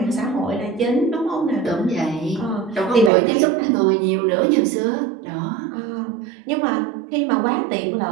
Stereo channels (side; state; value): left; drops out; at 3.1 s